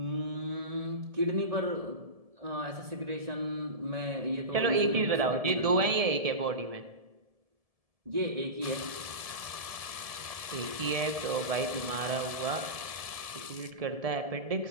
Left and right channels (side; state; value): left; late; 1.7 ms